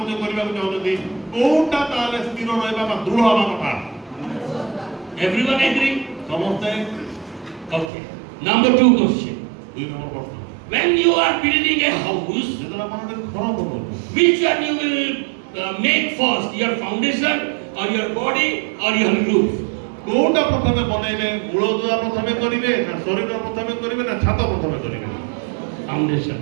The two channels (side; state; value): left; drops out; at 7.9 s